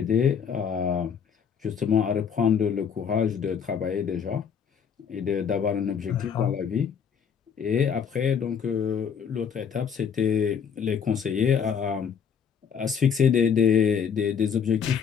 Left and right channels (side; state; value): right; quieter; 7.2 dB